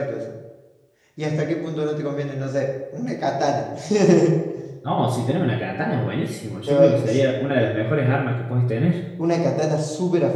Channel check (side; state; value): both; identical; correlation 1.00